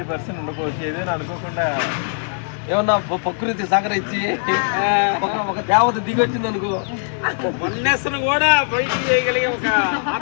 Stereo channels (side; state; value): right; silent; digital silence